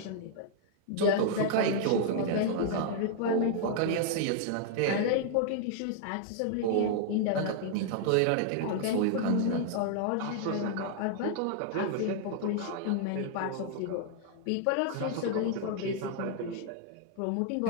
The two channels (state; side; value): different; both; correlation 0.00